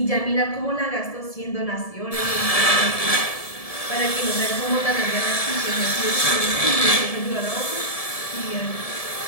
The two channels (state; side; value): late; right; 1.7 ms